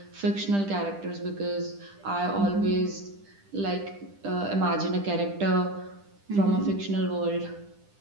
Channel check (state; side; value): late; left; 10 ms